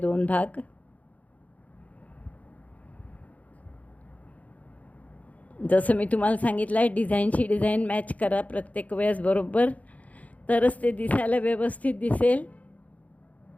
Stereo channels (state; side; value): late; right; 0.070 ms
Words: भाग. जसं मी तुम्हाला सांगितलं आहे, डिझाईनशी डिझाईन मॅच करा प्रत्येक वेळेस बरोबर, तरच ते दिसायला व्यवस्थित दिसेल.